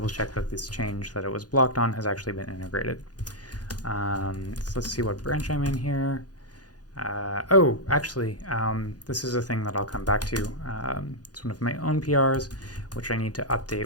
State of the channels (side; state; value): right; late; 0.69 ms